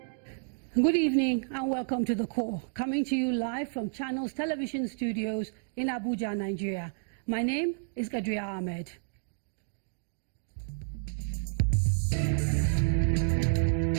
evening and welcome to The Core, coming to you live from Channels Television Studios in Abuja, Nigeria. My name is Gadria Ahmed.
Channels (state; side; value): silent; left; digital silence